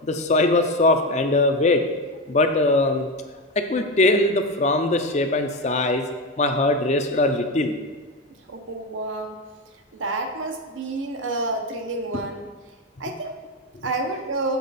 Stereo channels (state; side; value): normal; both; correlation 0.16